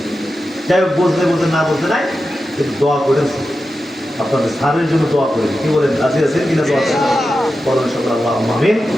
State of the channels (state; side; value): normal; both; correlation 0.91